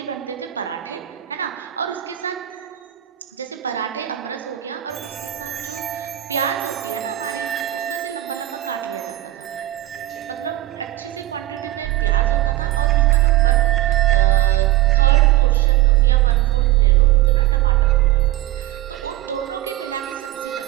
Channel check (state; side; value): quieter; left; 15.3 dB